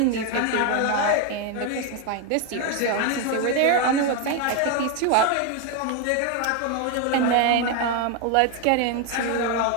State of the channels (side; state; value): both; different; correlation 0.01